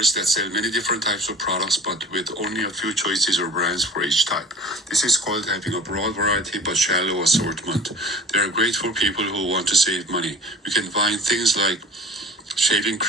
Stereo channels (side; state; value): both; normal; correlation 0.44